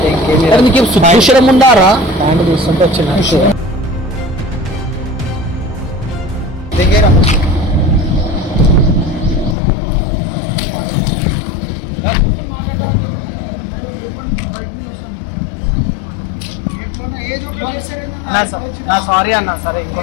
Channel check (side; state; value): right; drops out; at 9.6 s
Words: నీకు భూషణం ఉండారా ప్యాంట్ చూస్తుంటే వచ్చిన నా సారీ అన్న సరే